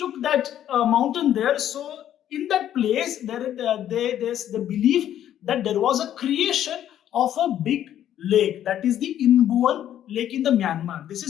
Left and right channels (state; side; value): quieter; right; 11.1 dB